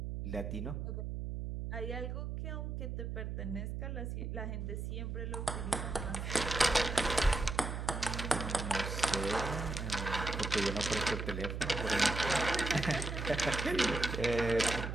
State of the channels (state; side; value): noise; right; hum, 4 dB below the sound